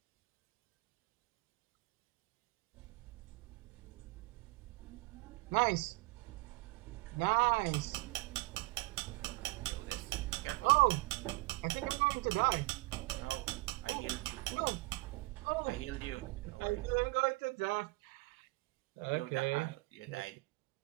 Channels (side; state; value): left; quieter; 23.8 dB